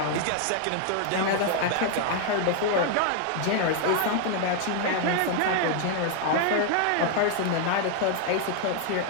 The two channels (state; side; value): different; both; correlation 0.00